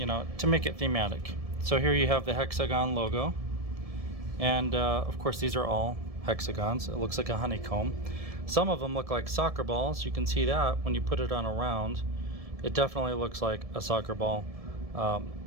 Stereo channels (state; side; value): late; left; 1.7 ms